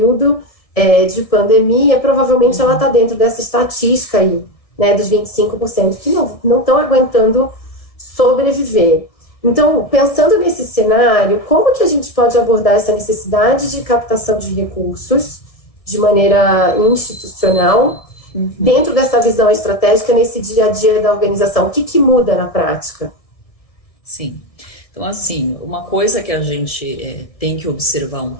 de pandemia, provavelmente ela está dentro dessa estatística aí, né, dos 25% que não estão aguentando sobreviver. Então, pensando nesse cenário, como que a gente pode abordar essa necessidade de captação de recursos de maneira institucional, dentro dessa visão estratégica, nesse dia a dia da organização? O que muda na prática? Sim. Então, assim, uma coisa que a gente tem que observar um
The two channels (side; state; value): right; late; 1.6 ms